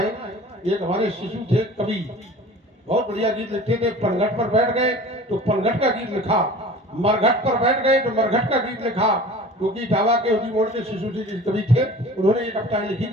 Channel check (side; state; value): both; normal; correlation 0.42